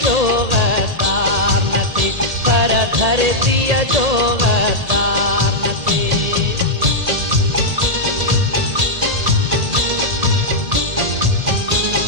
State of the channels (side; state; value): left; late; 1.8 ms